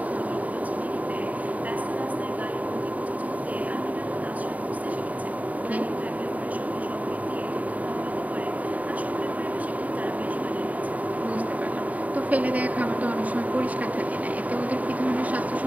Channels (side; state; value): left; late; 0.072 ms